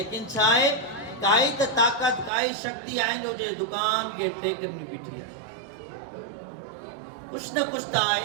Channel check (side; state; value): left; drops out; at 2.3 s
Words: छा आहे काई त ताक़त, काई शक्ति आहे जो जे दुकान के टेकनि में बीठी आहे। कुछ न कुछ त आहे